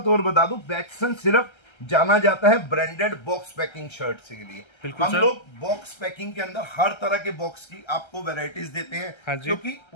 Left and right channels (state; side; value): late; right; 1.3 ms